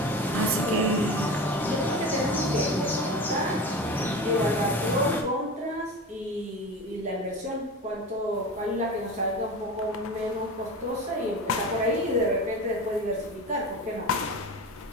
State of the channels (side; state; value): both; normal; correlation 0.29